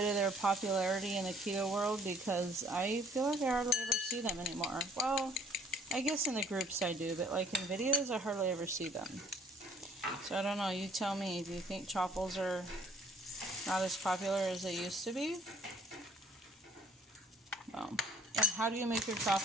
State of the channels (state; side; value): normal; both; correlation 0.58